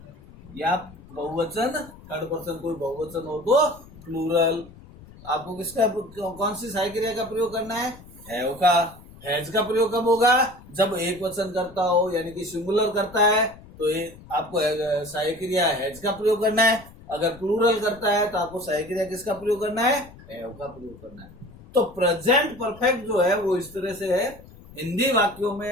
या बहुवचन थर्ड पर्सन कोई बहुवचन हो तो प्लूरल। आपको किसका कौन सी सहायक क्रिया का प्रयोग करना है? हैव का। हैज का प्रयोग कब होगा? जब एक वचन करता हो, यानी कि सिंगुलर करता है तो आपको सहायक क्रिया हैज का प्रयोग करना है। अगर प्लूरल करता है तो आपको सहायक क्रिया किसका प्रयोग करना है? हैव का प्रयोग करना है। तो प्रेजेंट परफेक्ट जो है वो इस तरह से है। हिंदी वाक्यों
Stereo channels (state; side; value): noise; left; rumble, 20 dB below the sound